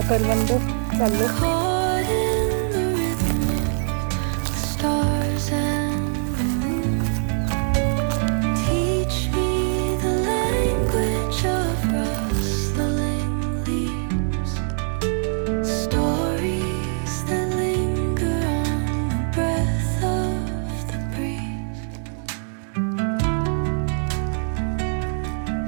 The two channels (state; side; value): silent; left; 63 dB below the other